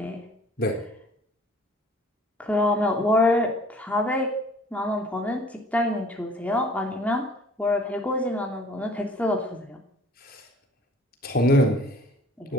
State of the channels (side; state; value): both; normal; correlation 0.52